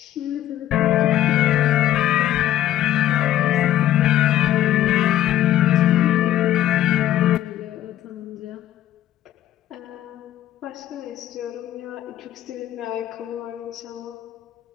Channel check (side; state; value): right; quieter; 12.7 dB